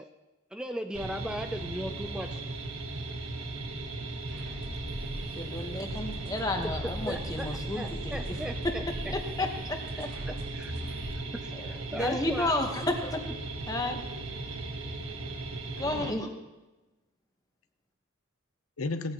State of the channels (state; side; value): normal; both; correlation 0.57